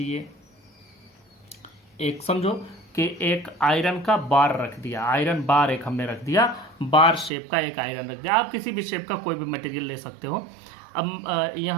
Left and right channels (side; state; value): left; drops out; at 7.3 s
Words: एक समझो कि एक आयरन का बार रख दिया, आयरन बार एक हमने रख दिया, बार शेप का एक आयरन रख दिया। आप किसी भी शेप का कोई भी मटेरियल ले सकते हो। अब